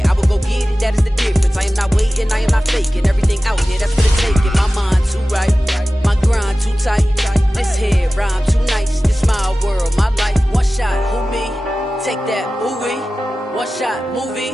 I will go get it. That is the difference. I am not waiting. I am not faking. Everything out here, that's for the taking. My mind too right. My grind too tight. This here rhyme too nice. This my world, my life. One shot, who me? Take that, ooh wee. One shot, movie.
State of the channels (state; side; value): normal; both; correlation 0.96